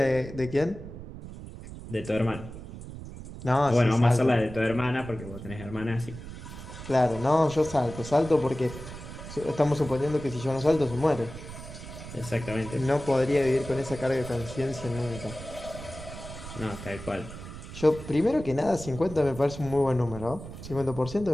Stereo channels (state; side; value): noise; right; rumble, 12 dB below the sound